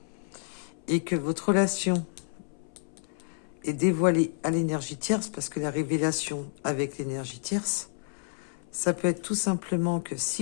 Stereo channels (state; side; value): silent; right; 58 dB below the other